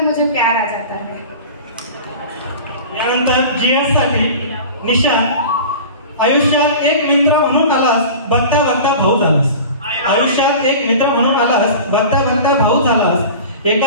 मुझे प्यार आ जाता है. यानंतर GS साठी निशा. आयुष्यात एक मित्र म्हणून आलास, बघता बघता भाऊ झालास. आयुष्यात एक मित्र म्हणून आलास, बघता बघता भाऊ झालास.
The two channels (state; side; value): inverted; both; correlation -0.36